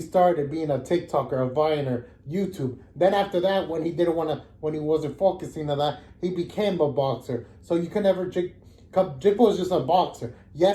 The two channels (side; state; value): both; identical; correlation 1.00